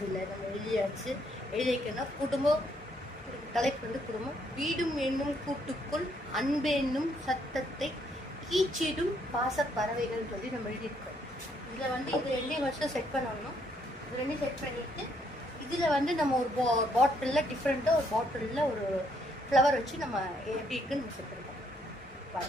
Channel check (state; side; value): normal; both; correlation 0.71